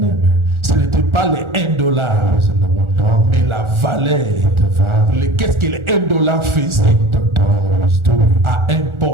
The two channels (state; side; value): late; left; 1.4 ms